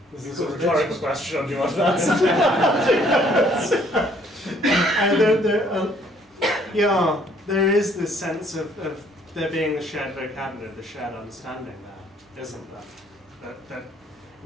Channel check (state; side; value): normal; both; correlation 0.63